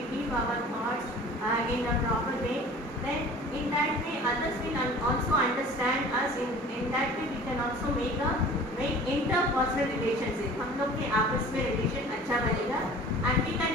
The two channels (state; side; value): normal; both; correlation 0.44